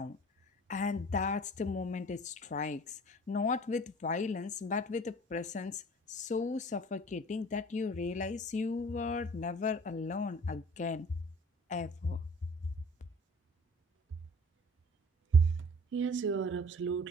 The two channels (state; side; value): normal; both; correlation 0.47